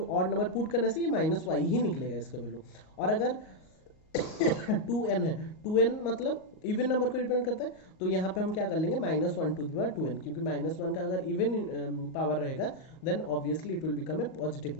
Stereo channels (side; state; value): right; late; 38 ms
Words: ऑड नंबर पुट करने से ये -y ही निकलेगा इसका वैल्यू। और अगर 2n है, 2n मतलब इवन नंबर को रिप्रेजेंट करता है, तो यहाँ पे हम क्या कर लेंगे, -1 टू द पावर 2n, क्योंकि -1 का अगर इवन पावर रहेगा then obviously it will become a positive